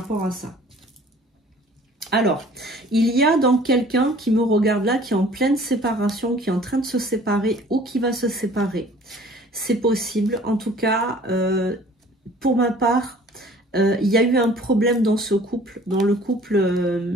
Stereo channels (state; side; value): normal; both; correlation 0.51